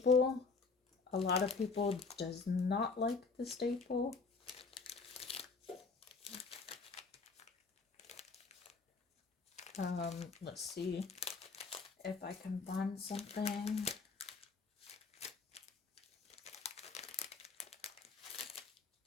A lot of people does not like the staple. Let's see if I can find something.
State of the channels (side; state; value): right; quieter; 4.6 dB